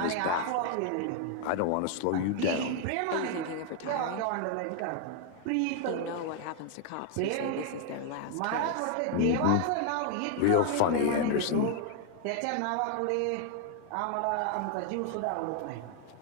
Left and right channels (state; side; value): different; both; correlation 0.00